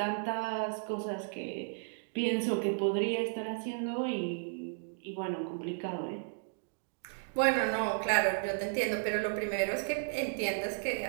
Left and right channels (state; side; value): silent; left; digital silence